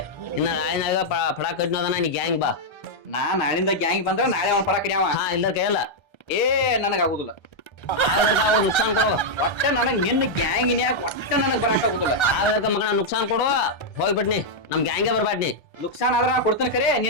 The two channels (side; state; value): right; late; 1.3 ms